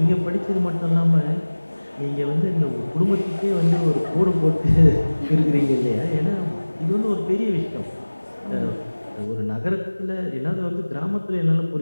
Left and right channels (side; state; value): both; inverted; correlation -1.00